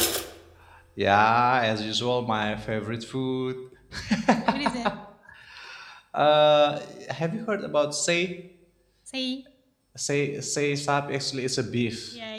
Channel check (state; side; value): identical; both; correlation 1.00